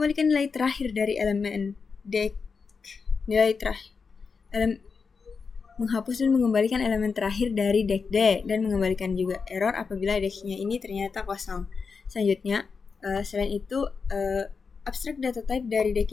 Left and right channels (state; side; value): quieter; right; 5.2 dB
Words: nilai terakhir dari elemen deck. Menghapus dan mengembalikan elemen terakhir dari deck D dan mengembalikan juga error apabila decknya ini ternyata kosong. Selanjutnya, selain itu abstract data type dari deck